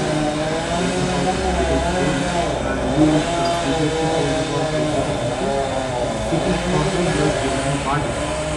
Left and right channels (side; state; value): both; identical; correlation 1.00